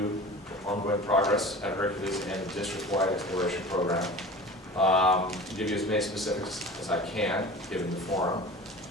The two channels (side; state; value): both; normal; correlation 0.37